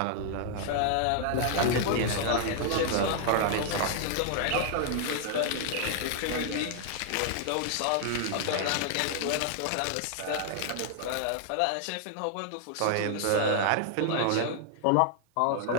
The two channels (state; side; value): different; both; correlation -0.01